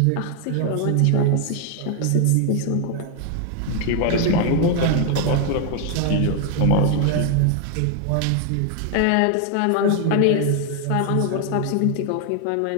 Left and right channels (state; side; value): different; both; correlation 0.01